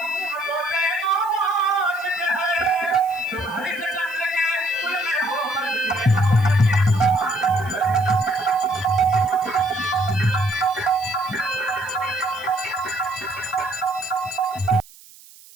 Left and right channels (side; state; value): right; noise; hiss, 22 dB below the sound